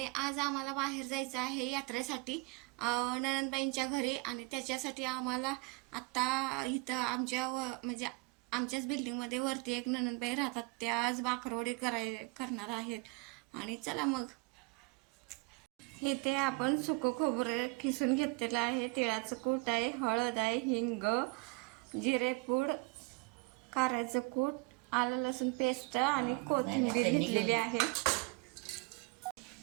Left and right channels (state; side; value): quieter; left; 27.9 dB